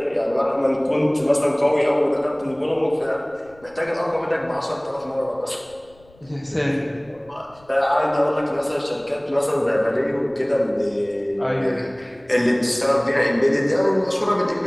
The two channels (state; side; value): noise; left; rumble, 28 dB below the sound